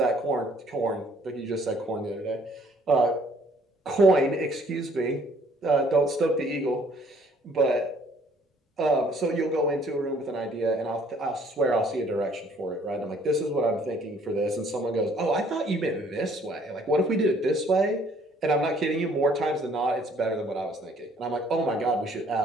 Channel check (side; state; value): both; normal; correlation 0.61